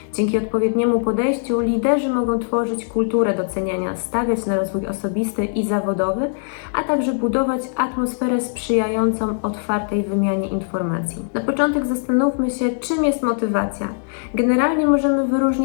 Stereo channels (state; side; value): silent; right; digital silence